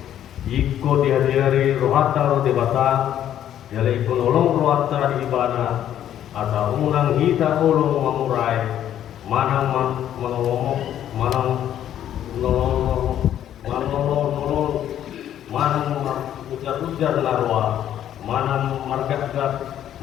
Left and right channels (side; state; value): right; quieter; 10.9 dB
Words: iko dihadiri rohata ro debata jale iko nolong rohata di ibana atau unang hita olong mamurai manang manolong manang ujar-ujar larwa, manang margat-gat,